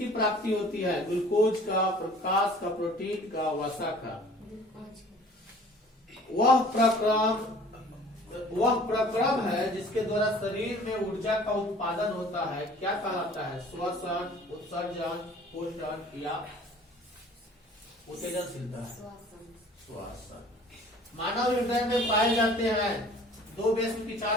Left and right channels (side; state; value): both; normal; correlation 0.50